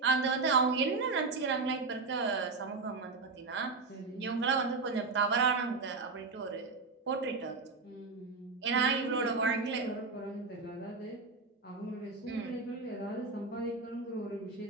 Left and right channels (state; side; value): quieter; left; 4.1 dB